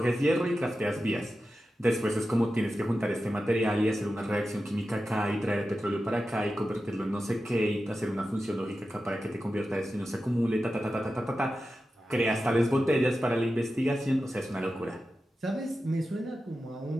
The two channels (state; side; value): normal; both; correlation 0.92